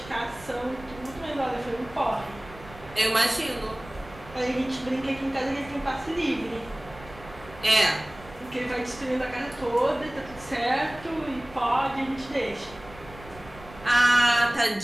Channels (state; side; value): noise; right; rumble, 18 dB below the sound